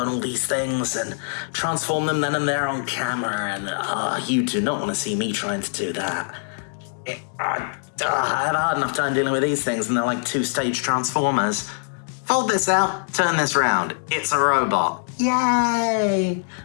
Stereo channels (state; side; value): silent; right; 63 dB below the other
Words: all these things and transform them then and there on camera, and you do not want to see me trying to do that. I have a hard enough time dealing with these things, and they're like two-stage transformers. Fold this out, turn this round. It's a robot. Yay!